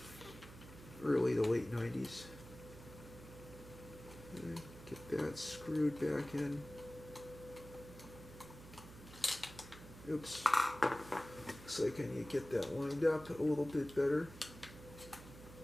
Early to late 90s. Get that screwed back in. Oops. Looks like I need to get that lined up a little bit better.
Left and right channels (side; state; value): right; noise; hum, 16 dB below the sound